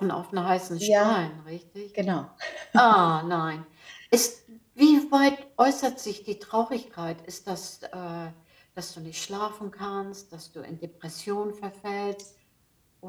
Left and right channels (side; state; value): both; identical; correlation 1.00